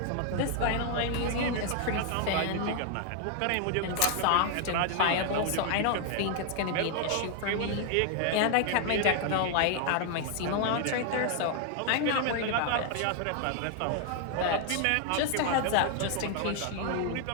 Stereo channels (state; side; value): different; both; correlation 0.00